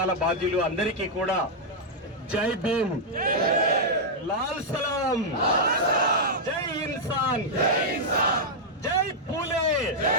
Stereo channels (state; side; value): normal; both; correlation -0.05